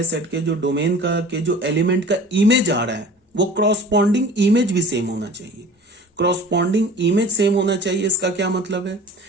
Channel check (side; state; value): both; normal; correlation 0.43